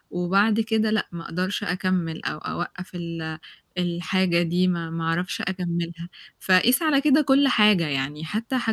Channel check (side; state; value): both; identical; correlation 1.00